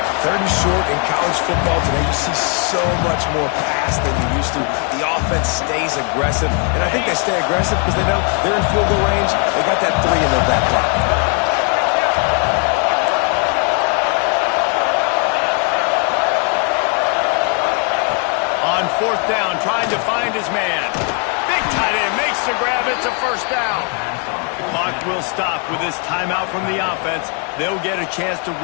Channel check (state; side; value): quieter; right; 39.6 dB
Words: 3rd and short in college football today, you see so much more pass than you used to. The offense stays aggressive, and I think they stay aggressive because they know they're in field goal range. They got that 3 in their back pocket. fourth down, trying to find his man. Big tight end makes the grab. It's a first down. The clock will stop with this timeout from the offense. They'll get a chance to